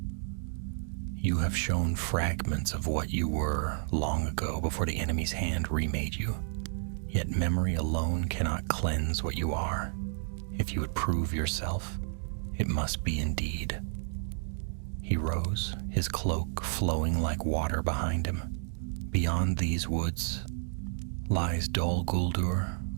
"You have shown fragments of what you were long ago before the enemy's hand remade you. Yet memory alone cannot cleanse what you are. If you would prove yourself, it must be indeed." He rose, his cloak flowing like water behind him. "Beyond these woods lies Dol Guldur,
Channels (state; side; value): silent; left; digital silence